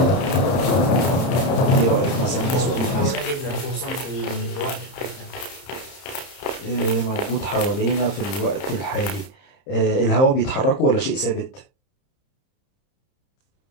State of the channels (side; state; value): right; late; 31 ms